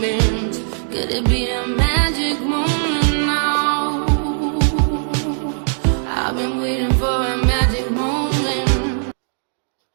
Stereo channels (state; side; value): silent; left; digital silence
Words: Could it be a magic moment now? I've been waiting for a magic moment.